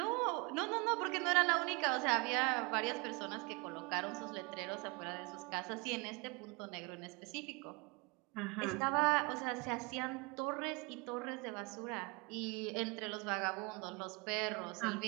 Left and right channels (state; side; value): quieter; left; 28.4 dB